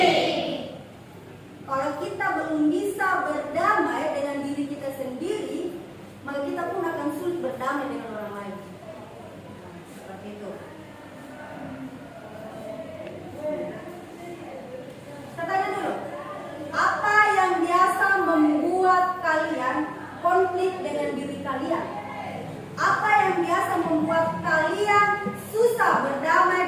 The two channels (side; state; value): both; identical; correlation 1.00